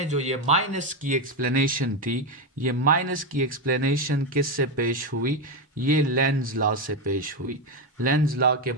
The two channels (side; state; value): both; normal; correlation 0.09